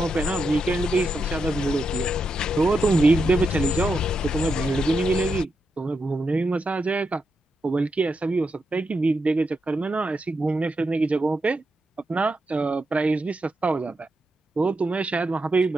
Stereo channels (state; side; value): normal; both; correlation 0.85